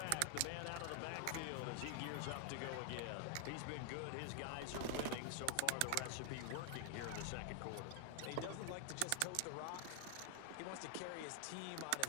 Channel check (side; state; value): both; different; correlation 0.00